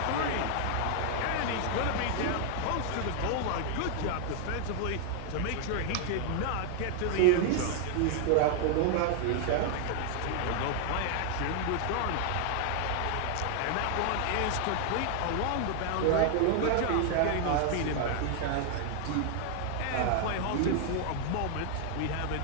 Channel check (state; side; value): different; both; correlation 0.00